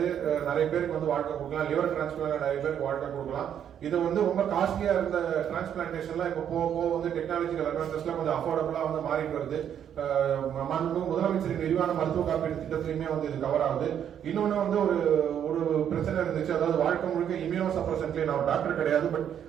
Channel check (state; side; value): quieter; left; 9.2 dB